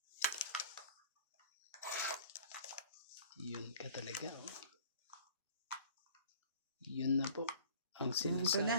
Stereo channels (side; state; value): both; inverted; correlation -0.49